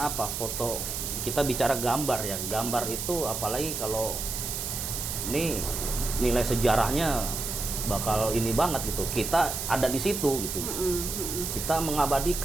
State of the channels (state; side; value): noise; right; hiss, 4 dB below the sound